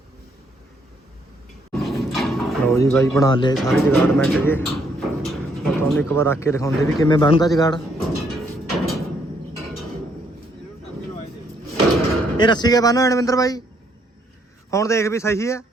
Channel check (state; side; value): normal; both; correlation 0.70